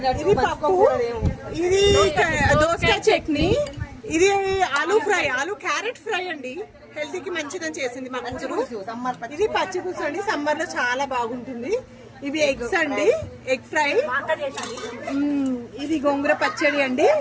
ఇది పప్పు, ఇది దోసకాయ చట్నీ, ఇది aloo fry, aloo carrot fry అండి, హెల్త్ కి మంచిదని చేసింది మా కూతురు. ఇది పచ్చి పులుసు అండి, సమ్మర్ లో చాలా బాగుంటుంది. ఇవి ఎగ్స్ అండి, ఎగ్ ఫ్రై, ఇది గోంగూర పచ్చడి అండి,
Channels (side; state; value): both; identical; correlation 1.00